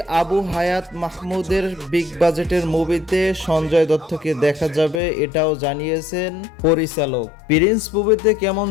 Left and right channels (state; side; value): drops out; right; at 5.0 s